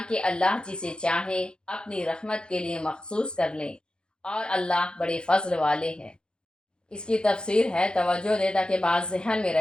اللہ جسے چاہے اپنی رحمت کے لیے مخصوص کر لیں، اور اللہ بڑے فضل والے ہیں۔ اس کی تفسیر ہے، توجہ دے تاکہ بات ذہن میں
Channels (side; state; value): right; late; 0.049 ms